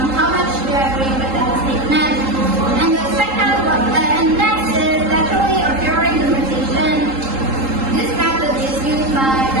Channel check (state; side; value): late; left; 3.8 ms